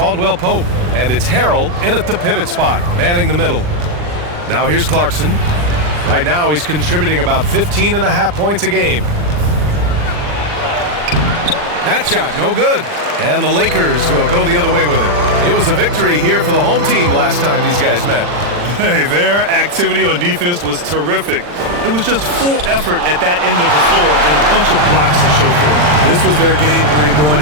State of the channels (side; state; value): left; late; 40 ms